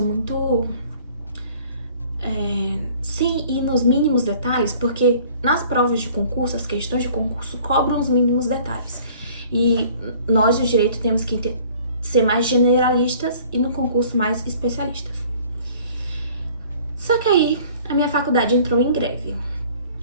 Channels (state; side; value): inverted; both; correlation -0.52